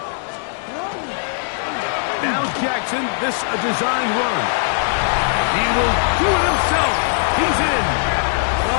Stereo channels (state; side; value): silent; right; 66 dB below the other